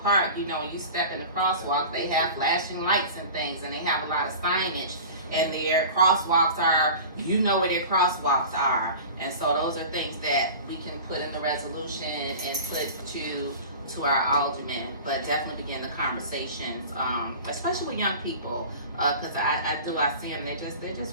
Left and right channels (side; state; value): both; inverted; correlation -0.37